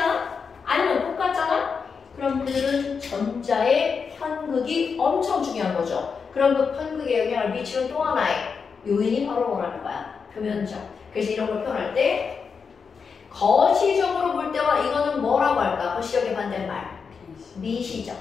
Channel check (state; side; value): quieter; right; 5.7 dB